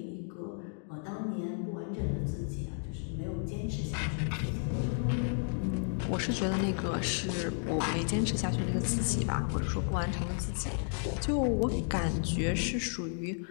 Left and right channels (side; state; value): right; silent; 56 dB below the other